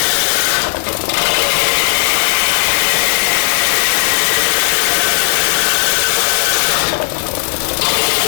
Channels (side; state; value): right; silent; digital silence